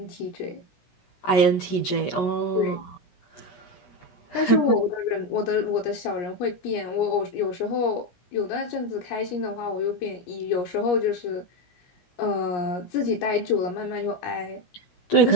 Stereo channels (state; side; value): late; right; 17 ms